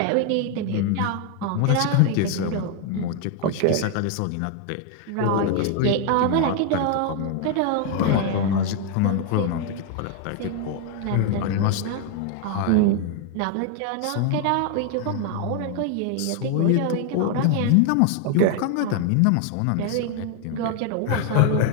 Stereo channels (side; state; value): both; different; correlation 0.00